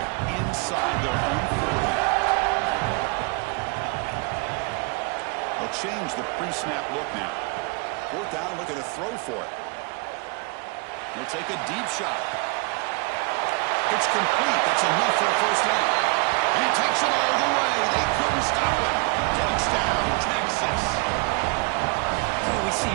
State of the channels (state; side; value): quieter; left; 29.3 dB